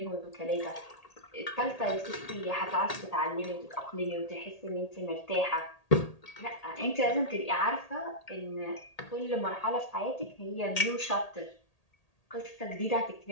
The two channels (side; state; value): right; late; 1.8 ms